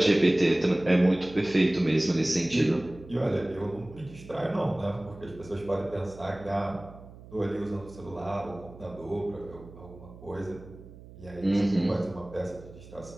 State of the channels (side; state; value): right; noise; hum, 18 dB below the sound